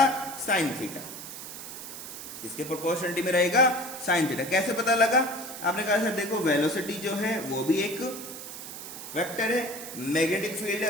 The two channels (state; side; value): noise; right; hiss, 10 dB below the sound